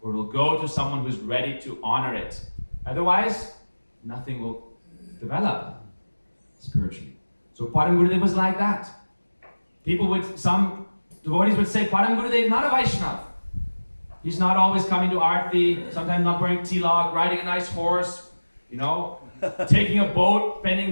or it will go to someone who's ready to honor it. Otherwise, nothing will develop spiritually. So Param Gurudev was like that. Some devotees would say, Param Gurudev is not a Vaishnava. He's not always coming to Aarti, sometimes not wearing tilak, riding a nice horse, taking a boat, spending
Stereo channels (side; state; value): both; inverted; correlation -1.00